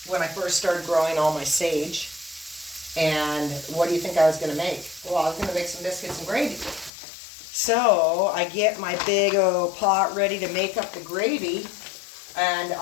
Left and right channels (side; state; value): right; drops out; at 6.9 s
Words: when I first started growing all my sage. And what do you think I was going to make? Well, I was going to make some biscuits and gravy. So I get my big old pot ready to make up the gravy. And